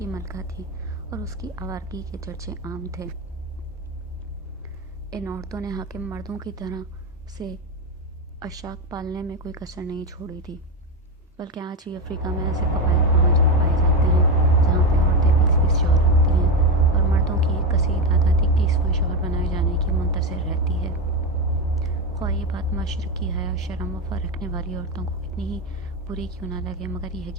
ملکہ تھی اور اس کی آوارگی کے چرچے عام تھے۔ ان عورتوں نے حاکم مردوں کی طرح سے اشاک پالنے میں کوئی کسر نہیں چھوڑی تھی، بلکہ آج بھی افریقہ میں ایسے قبائل پائے جاتے ہیں جہاں پہ عورتیں 20 شوہر رکھتی ہیں اور مردوں کی ایک کثیر تعداد 21واں شوہر بنائے جانے کی منتظر رہتی ہے۔ خواہ یہ بات مشرقی حیا شرم وفا رکھنے والی عورتوں کو کتنی ہی بری کیوں نہ لگے، مگر یہ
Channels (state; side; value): normal; both; correlation 0.13